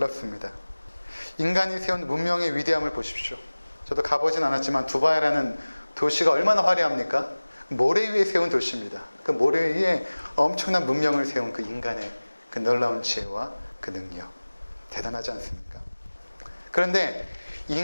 인간이 세운 문명의 위대함을 보십시오. 저도 가보진 않았지만 두바이라는 도시가 얼마나 화려합니까? 모래 위에 세운 도시입니다. 그 모래 위에 엄청난 문명을 세운 그 인간의 그 놀라운 지혜와 그 능력, 대단하지 않습니까? 그런데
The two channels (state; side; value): inverted; both; correlation -1.00